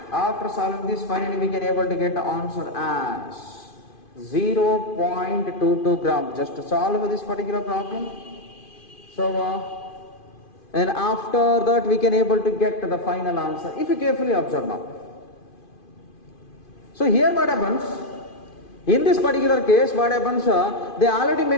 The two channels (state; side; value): late; right; 2.5 ms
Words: finally we can able to get the answer as 0.22 gram. Just to solve this particular problem. So and after that we can able to get the final answer if you carefully observe now. So here what happens, in this particular case what happens, they already